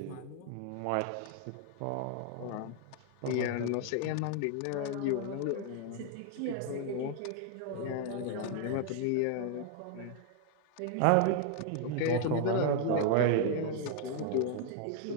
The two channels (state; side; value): different; both; correlation 0.00